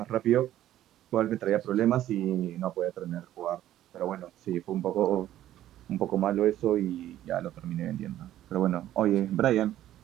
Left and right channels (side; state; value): left; quieter; 12.9 dB